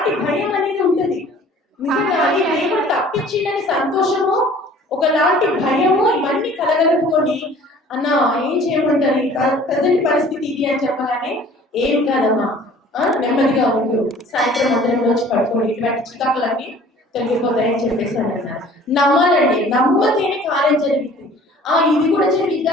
భయం అనేది ఉంటుంది. నిజంగా అది దేవుడు తప్పించిందని సంతోషము, ఒకలాంటి భయము, ఇవన్నీ కలగలుపుకొని అన్న ఏం చేయమంటారు, ప్రజెంట్ పరిస్థితి ఇది అని చెప్పగానే ఏం కాదమ్మా నెమ్మదిగా ఉండు, సాయంత్రం మందిరంలో వచ్చి పడుకోండి, ఇటువంటి చికాకులన్నీ తొలగిపోతాయని చెప్పేసి అని అన్నారు. నమ్మాలండి, నమ్మతేనే కార్యం జరిగింది. ఇది కూడా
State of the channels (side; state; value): both; normal; correlation 0.50